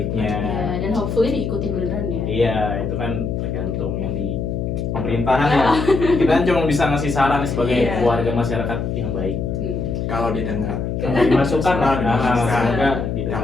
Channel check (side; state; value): left; noise; hum, 2 dB below the sound